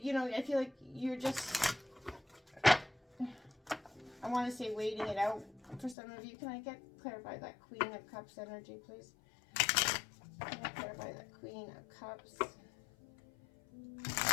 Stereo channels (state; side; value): drops out; right; at 6.0 s